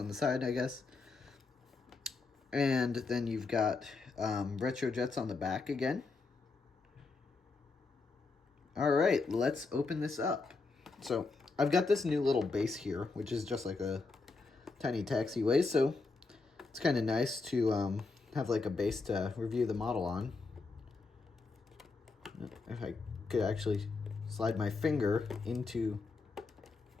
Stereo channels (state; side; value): quieter; right; 4.0 dB